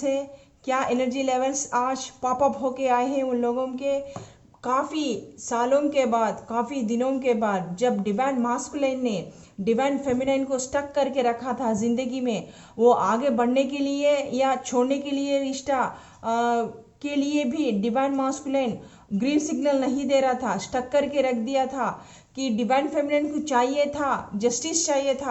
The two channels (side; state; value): both; identical; correlation 1.00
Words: है, क्या एनर्जी लेवल्स आज पॉप अप होके आए हैं उन लोगों के। काफ़ी सालों के बाद, काफ़ी दिनों के बाद जब डिवाइन मास्कुलिन ने डिवाइन फेमिनाइन को स्टक करके रखा था ज़िंदगी में, वो आगे बढ़ने के लिए या छोड़ने के लिए रिश्ता के लिए भी डिवाइन मास्कुलिन ग्रीन सिग्नल नहीं दे रहा था, स्टक करके रख दिया था कि डिवाइन फेमिनिन को चाहिए था, जस्टिस चाहिए